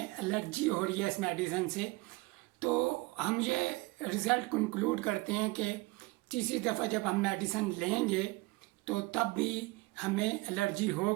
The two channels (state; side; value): quieter; left; 23.5 dB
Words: एलर्जी हो रही है इस मेडिसिन से, तो हम ये रिज़ल्ट कंक्लूड करते हैं कि तीसरी दफ़ा जब हम मेडिसिन लेंगे तो तब भी हमें एलर्जी